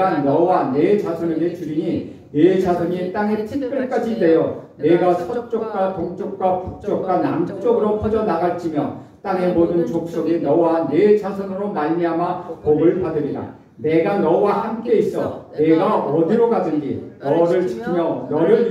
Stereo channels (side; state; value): both; identical; correlation 1.00